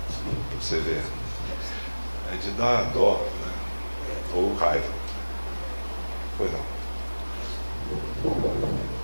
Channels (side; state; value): both; inverted; correlation -1.00